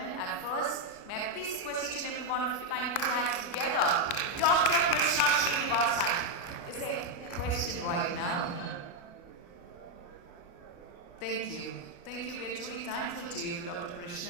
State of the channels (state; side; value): late; right; 29 ms